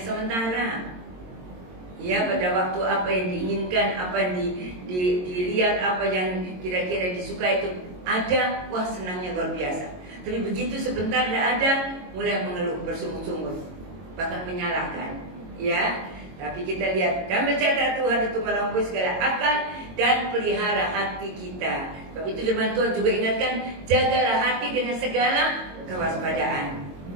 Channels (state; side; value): late; left; 22 ms